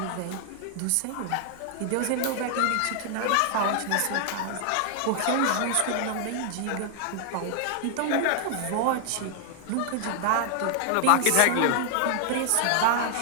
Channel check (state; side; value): different; both; correlation 0.00